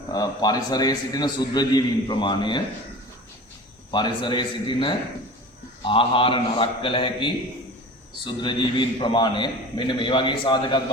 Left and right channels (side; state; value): both; normal; correlation 0.37